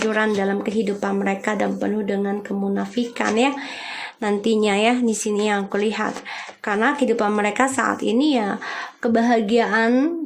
dalam kehidupan mereka dan penuh dengan kemunafikan ya. Nantinya ya, di sini yang aku lihat, karena kehidupan mereka saat ini ya kebahagiaan,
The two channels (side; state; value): both; identical; correlation 1.00